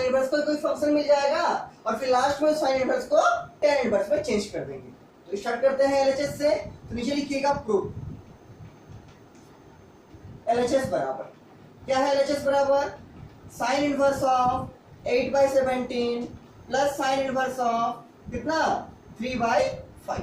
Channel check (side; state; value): both; identical; correlation 1.00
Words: इनवर्स का कोई फंक्शन मिल जाएगा और फिर लास्ट में साइन इनवर्स को tan इनवर्स में चेंज कर देंगे। तो स्टार्ट करते हैं एलएचएस से। तो नीचे लिखिएगा प्रूफ। एलएचएस बराबर क्या है? एलएचएस बराबर sine inverse of 8/17 plus sine inverse of कितना?